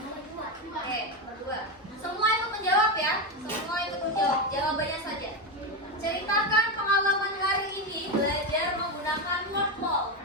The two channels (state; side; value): normal; both; correlation 0.12